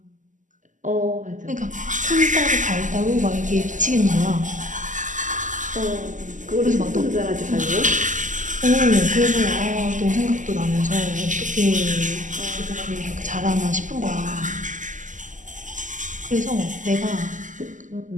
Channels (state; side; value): late; left; 0.37 ms